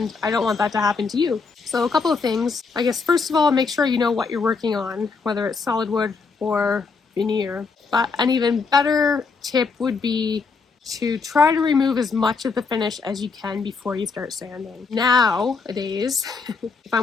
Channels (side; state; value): right; quieter; 4.7 dB